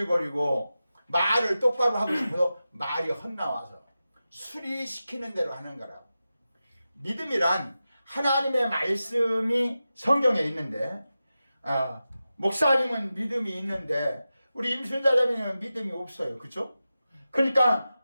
말을 똑바로 하고 싶어도 말이 헛나와서 술이 시키는 대로 하는 거라고. 믿음이란 하나님의 말씀이 성경에 있는데 목사님은 믿음이 있는데 우리 임순자자매는 믿음이 없어요. 그렇죠? 그러니까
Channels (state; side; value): inverted; both; correlation -0.93